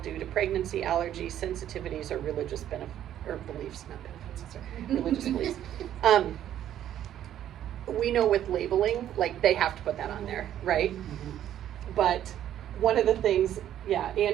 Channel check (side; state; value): left; quieter; 11.2 dB